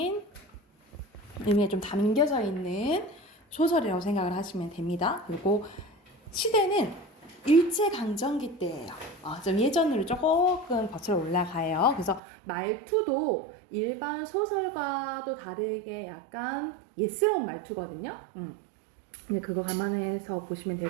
의미가 좀 담겨져 있는 소설이라고 생각을 하시면 됩니다. 그리고 시대는 일제강점기 때예요. 좀 예전으로 조금 거슬러 올라가요. 그래서 말투도 일반 소설과도 다르게 약간 예스러운 말투거든요. 근데 그거 감안해서 보시면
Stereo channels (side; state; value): left; drops out; at 12.2 s